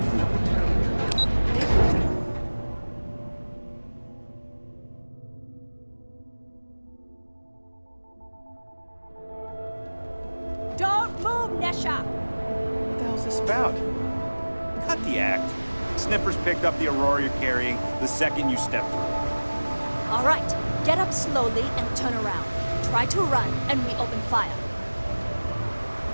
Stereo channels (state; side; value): inverted; both; correlation -1.00